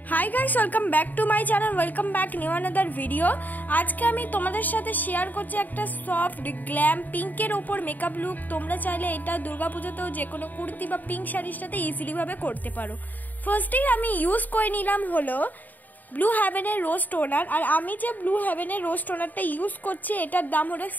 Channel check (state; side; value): late; right; 0.084 ms